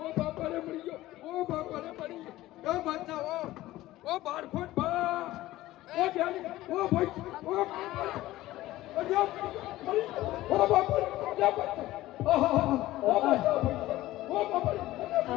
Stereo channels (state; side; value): quieter; right; 16.4 dB